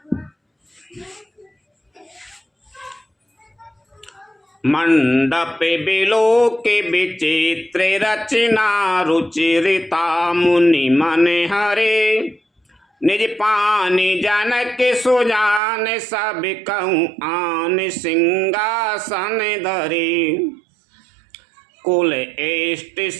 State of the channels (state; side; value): drops out; left; at 15.6 s